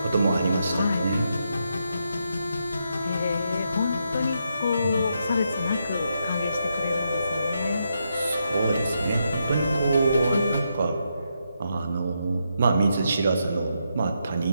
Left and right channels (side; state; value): both; inverted; correlation -0.81